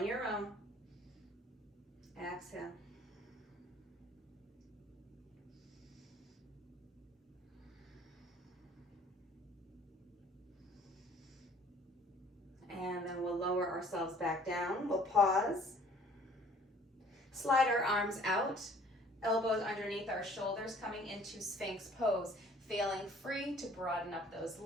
your own. Exhale. And then we'll lower ourselves back down. We'll pause. Slide our arms out. Elbows underneath our shoulders, coming into Sphinx pose. Feeling free to broaden up those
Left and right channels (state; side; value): normal; both; correlation 0.54